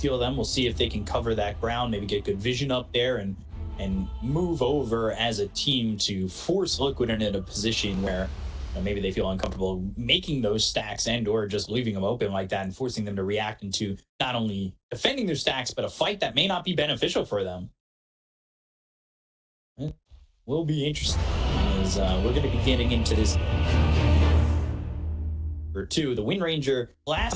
them. We'll see if they can cover that ground, maybe get good vision up there and move over as a team to force Liquid into a position where maybe they feel uncomfortable making those stacks and or just leaving them open like that and forcing them to react into not only defending their stacks, but a fight that may not be beneficial for them. It will be interesting as we're going to be getting into this. Or two, the Wind Ranger last,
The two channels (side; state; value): both; identical; correlation 1.00